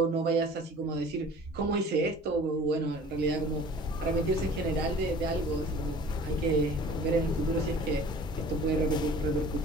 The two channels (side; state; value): both; normal; correlation 0.46